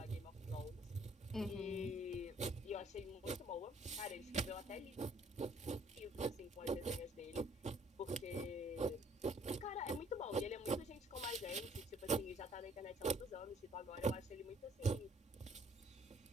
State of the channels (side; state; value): both; normal; correlation 0.61